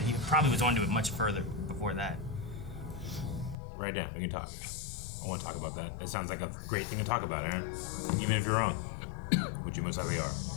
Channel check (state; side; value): drops out; right; at 3.6 s